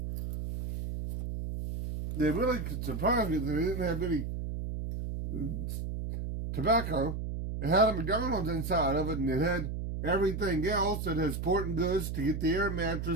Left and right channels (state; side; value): noise; right; hum, 4 dB below the sound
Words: They really surprised me that they didn't have any tobacco. It had a McDonald's inside of it, and it had everything else. It had sporting goods to get the air